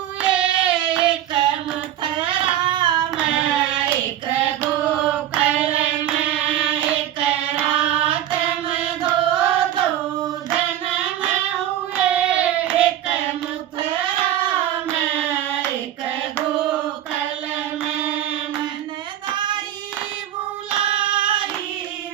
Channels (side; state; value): left; quieter; 11.9 dB